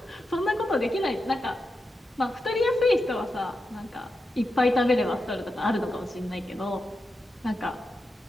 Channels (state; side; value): normal; both; correlation 0.88